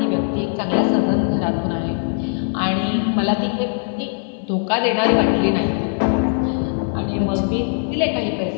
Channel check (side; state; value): right; silent; 55 dB below the other